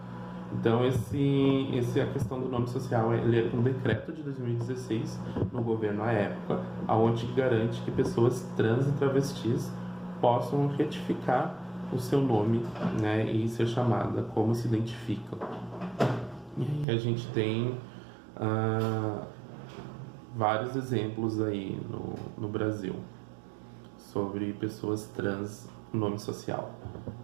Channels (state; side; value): drops out; left; at 16.9 s